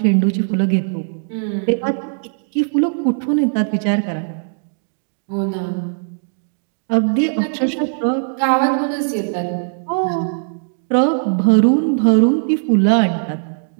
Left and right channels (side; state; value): left; silent; digital silence